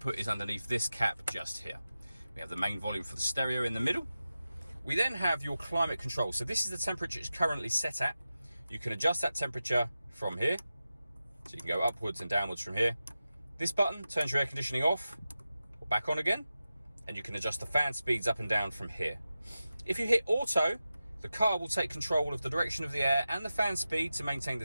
is underneath this cap just here. We have the main volume for the stereo in the middle. We then have your climate control. So this is the temperature it's currently set at. You can adjust that temperature from here. So you can go upwards and downwards from here. This button turns your air conditioning off or back on again, and you can adjust the fan speeds up and down from here. If you hit auto, the car will take control of the direction of the air and the fan speed to maintain the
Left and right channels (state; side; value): inverted; both; correlation -0.93